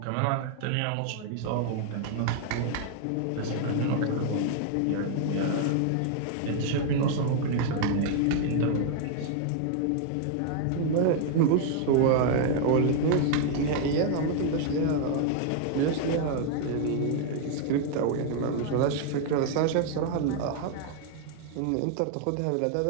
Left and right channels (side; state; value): both; different; correlation 0.00